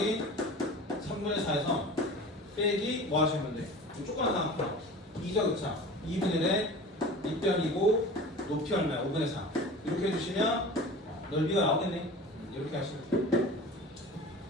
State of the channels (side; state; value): both; normal; correlation 0.37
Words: 3분의 4에서 빼기 뭐 하시면 돼? 조그만 상황 2죠, 그쵸? 2분의 1에 밑변이고 높이 얼마야? 5분의 4. 이렇게 해주시면 넓이가 나오겠네. 이렇게 하시면 돼요.